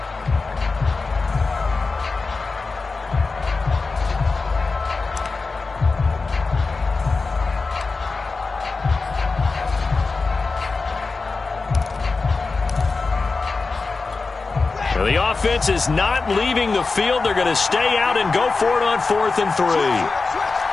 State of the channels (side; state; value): right; quieter; 4.0 dB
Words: The offense is not leaving the field. They're going to stay out and go for it on 4th and 3.